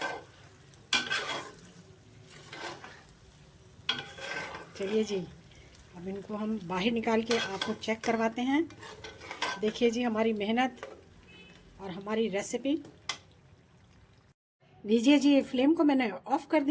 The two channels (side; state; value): both; identical; correlation 1.00